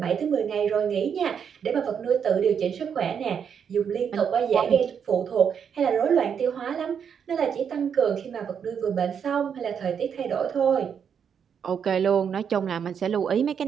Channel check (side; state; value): left; quieter; 7.5 dB